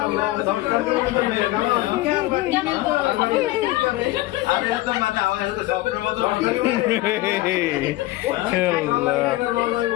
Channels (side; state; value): right; quieter; 17.7 dB